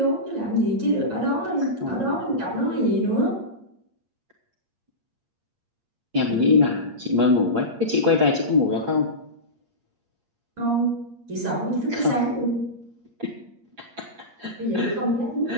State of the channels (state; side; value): late; left; 8.6 ms